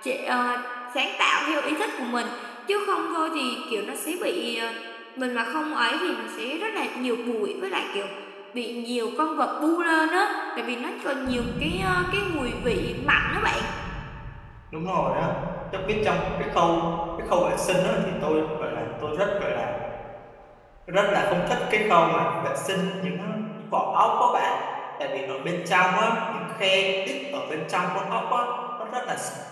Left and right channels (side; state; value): both; identical; correlation 1.00